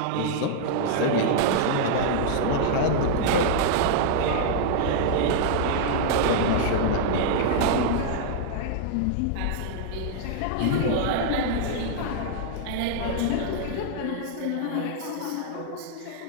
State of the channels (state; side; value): different; both; correlation -0.01